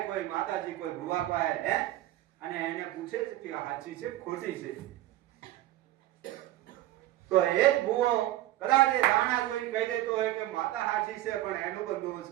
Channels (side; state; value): left; quieter; 15.2 dB